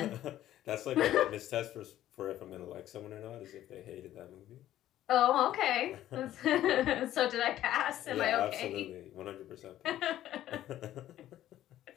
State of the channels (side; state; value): right; quieter; 13.0 dB